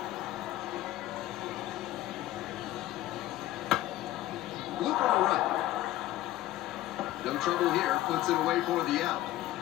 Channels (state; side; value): quieter; right; 15.0 dB